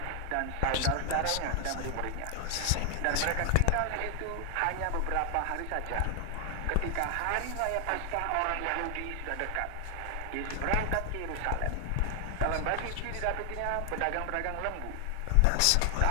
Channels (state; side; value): different; both; correlation 0.00